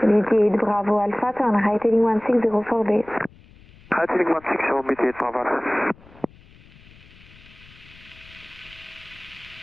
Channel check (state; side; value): noise; left; rumble, 24 dB below the sound